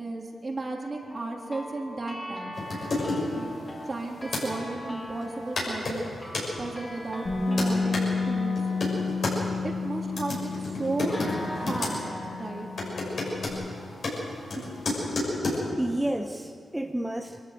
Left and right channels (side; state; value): both; normal; correlation 0.89